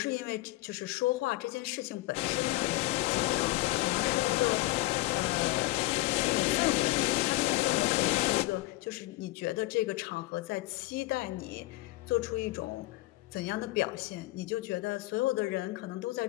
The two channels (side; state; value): right; quieter; 19.7 dB